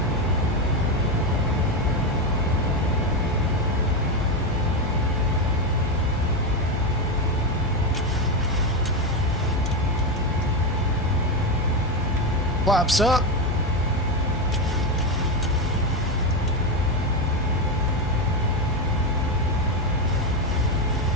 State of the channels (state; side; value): normal; both; correlation 0.11